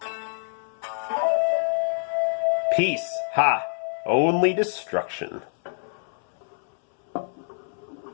Peace. Ha. Only destruction.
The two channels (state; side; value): silent; right; 61 dB below the other